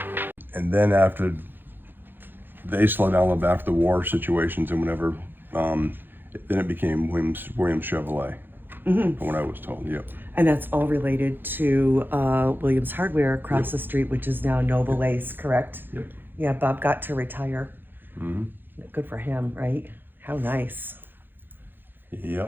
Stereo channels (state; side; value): late; left; 0.097 ms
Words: And then after they slowed down after the war situations and whatever, then it became Williams Chevrolet, from what I was told. Yep. And that's all related to Williams Hardware across the street, which is now Noble Ace, correct? Yep. Yeah, Bob got to retire. Mm-hmm. Good for him, right? How nice.